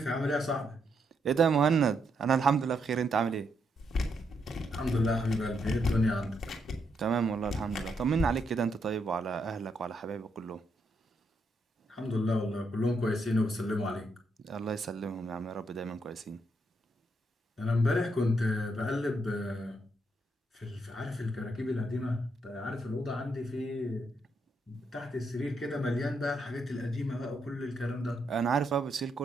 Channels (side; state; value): both; normal; correlation 0.78